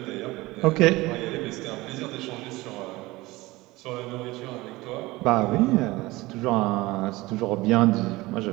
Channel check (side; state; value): left; quieter; 20.3 dB